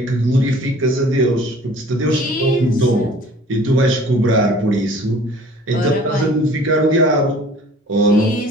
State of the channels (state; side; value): normal; both; correlation 0.49